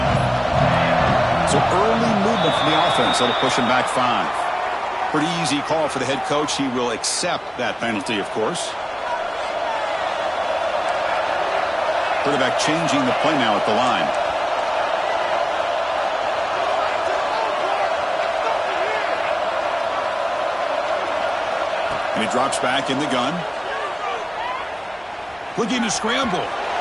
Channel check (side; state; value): both; identical; correlation 1.00